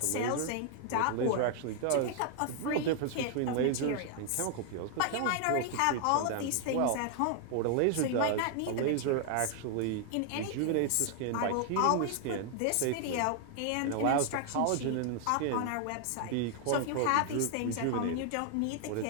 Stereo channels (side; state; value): both; different; correlation 0.00